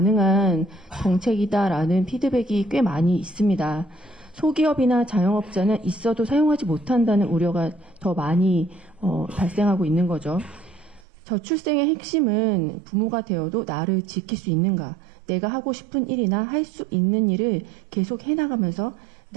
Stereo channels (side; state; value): left; drops out; at 11.1 s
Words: 정책이다라는 피드백이 꽤 많이 있습니다. 소기업이나 자영업자는 있어도 사용하지 못한다는 우려가 더 많이 발생하고 있는 거죠. 저출생의 핵심은 부모가 되어도 나를 지킬 수 있는가, 내가 하고 싶은 일이나 할 수 있는 일을 계속 해나가면서